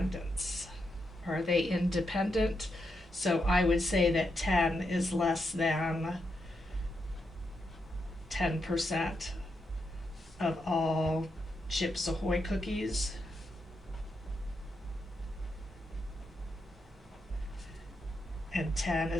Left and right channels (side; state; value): both; normal; correlation 0.83